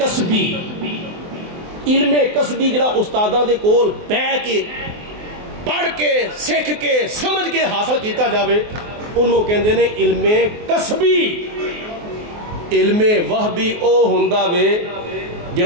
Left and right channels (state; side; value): late; left; 24 ms